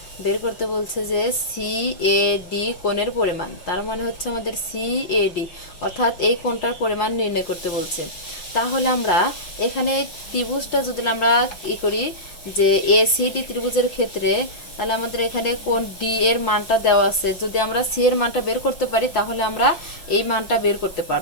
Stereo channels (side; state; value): right; late; 5.8 ms